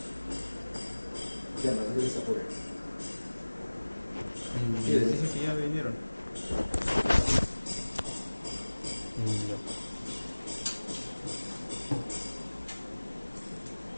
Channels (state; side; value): inverted; both; correlation -1.00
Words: Ya no se apure. Sí, dicen que ya vinieron. No.